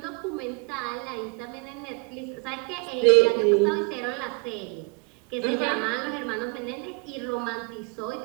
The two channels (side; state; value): left; quieter; 32.5 dB